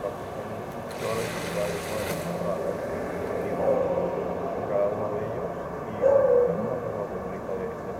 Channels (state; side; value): identical; both; correlation 1.00